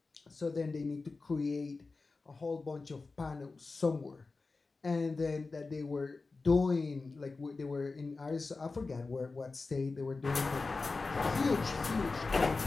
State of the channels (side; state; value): right; quieter; 3.9 dB